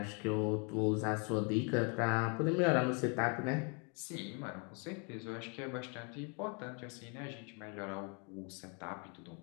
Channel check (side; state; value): right; quieter; 36.0 dB